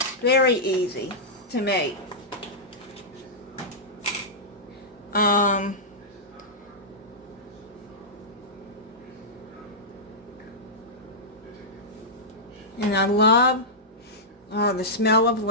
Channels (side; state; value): both; normal; correlation -0.11